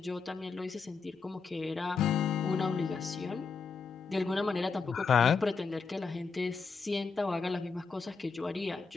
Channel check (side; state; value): right; quieter; 5.0 dB